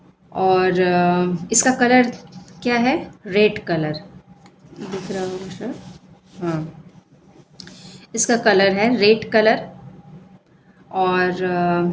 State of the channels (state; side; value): identical; both; correlation 1.00